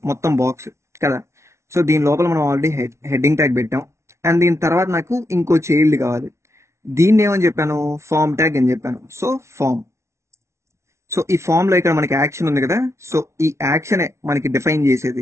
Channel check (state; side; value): late; left; 0.13 ms